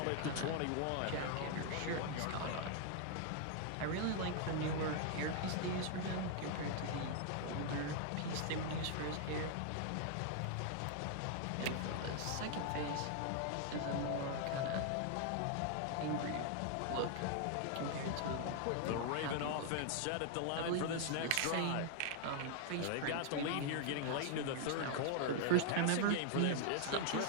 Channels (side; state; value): both; different; correlation 0.00